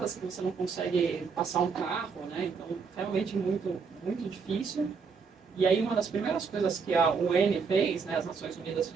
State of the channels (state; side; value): quieter; left; 5.4 dB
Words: que você não consegue passar um carro, né? Então, realmente muito, muito difícil. E aí, uma das primeiras coisas que a UN fez, né, as Nações Unidas